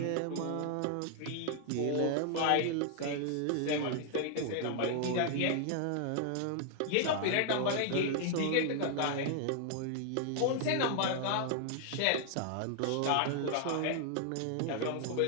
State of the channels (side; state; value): both; different; correlation 0.00